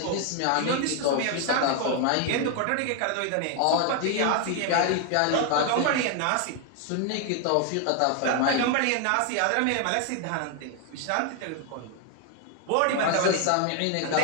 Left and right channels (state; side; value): different; both; correlation 0.00